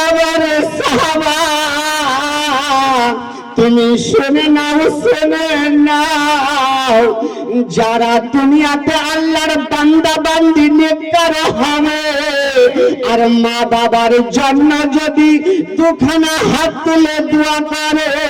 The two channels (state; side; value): identical; both; correlation 1.00